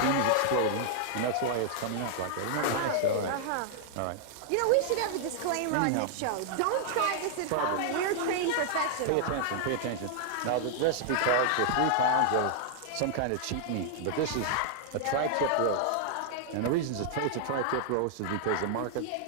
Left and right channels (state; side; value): different; both; correlation -0.01